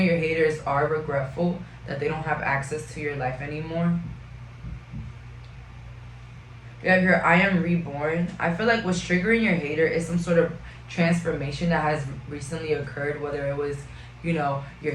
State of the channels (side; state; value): both; identical; correlation 1.00